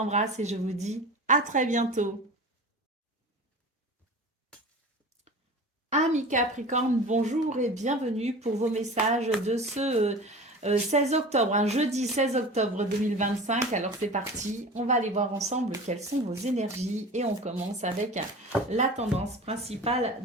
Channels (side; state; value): both; normal; correlation 0.35